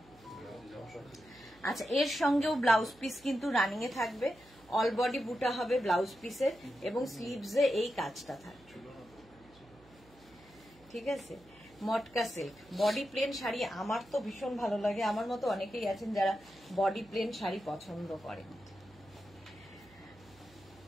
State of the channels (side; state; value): right; noise; hum, 27 dB below the sound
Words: আচ্ছা, এর সঙ্গেও ব্লাউজ পিস কিন্তু রানিং এ থাকবে, অল বডি বুটা হবে ব্লাউজ পিসের এবং স্লিভসে এই কাজটা থাকবে, ঠিক আছে। মটকা সিল্ক, বডি প্লেন শাড়ি আমার তো ভীষণ ভালো লাগে, আমার মতো অনেকেই আছেন যারা বডি প্লেন শাড়ি পছন্দ করেন।